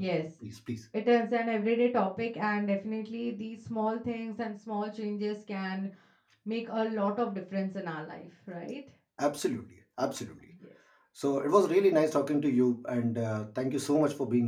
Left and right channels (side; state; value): both; identical; correlation 1.00